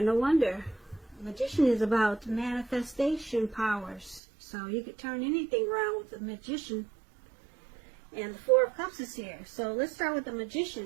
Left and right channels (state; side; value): drops out; left; at 4.2 s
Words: No wonder. The Magician is about manifestation powers. So you could turn anything around with the Magician. And the Four of Cups is here. So let's start with the